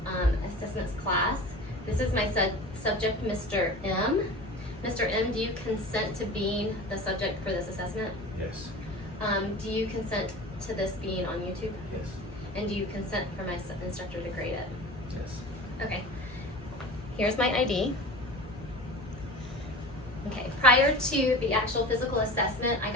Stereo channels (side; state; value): both; normal; correlation 0.36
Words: assessments class. This is my subject, Mr. M. Mr. M, do you consent to being the subject for this assessment? Yes. Do you consent to this being on YouTube? Yes. And do you consent for my instructor to grade it? Yes. Okay. Here's my ID. Okay, prior to the actual physical assessment, I